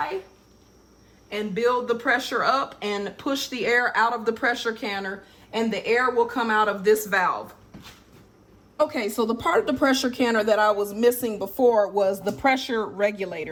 and build the pressure up and push the air out of the pressure canner, and the air will come out of this valve. Okay, so the part of the pressure canner that I was missing before was the pressure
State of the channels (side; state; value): both; identical; correlation 1.00